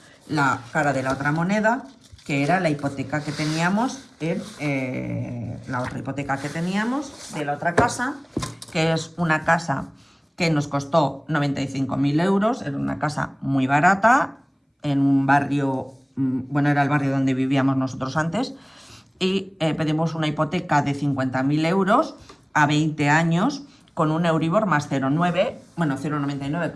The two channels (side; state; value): both; identical; correlation 1.00